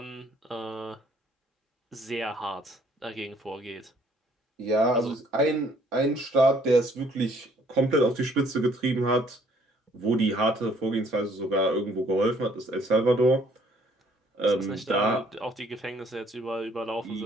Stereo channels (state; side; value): normal; both; correlation 0.62